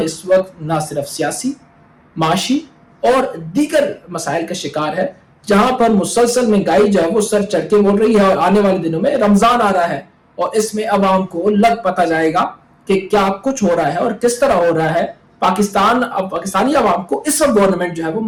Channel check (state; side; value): identical; both; correlation 1.00